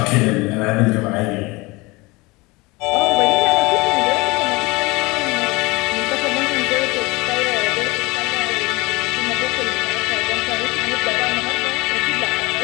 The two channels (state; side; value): quieter; right; 23.8 dB